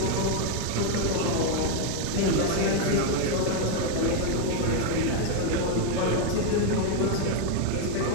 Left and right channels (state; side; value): different; both; correlation 0.01